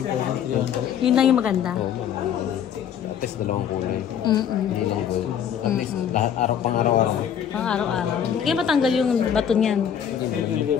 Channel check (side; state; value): right; quieter; 8.7 dB